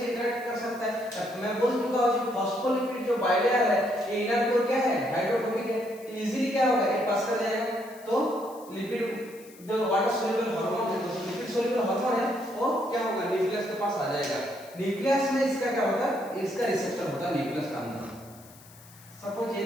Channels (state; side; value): noise; left; hiss, 23 dB below the sound